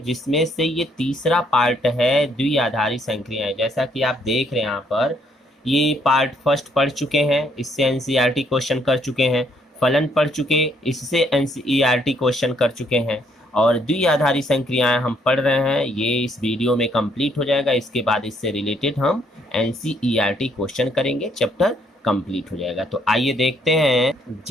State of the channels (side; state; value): both; normal; correlation 0.69